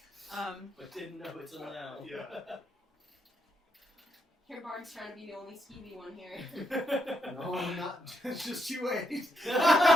But didn't know it till now. Yeah. Here, Bard's trying to be the only skeevy one here. No, I'm not. It's just you wait.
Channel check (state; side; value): normal; both; correlation 0.79